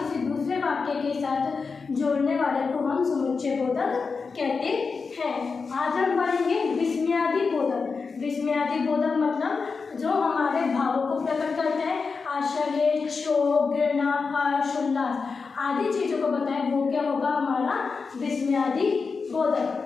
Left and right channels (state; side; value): quieter; right; 4.8 dB